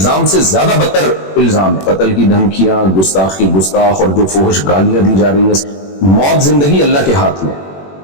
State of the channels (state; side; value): late; right; 21 ms